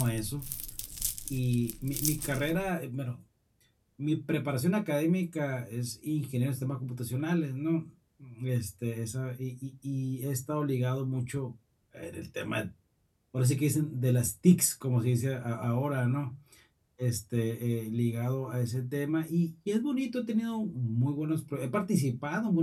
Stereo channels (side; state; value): both; identical; correlation 1.00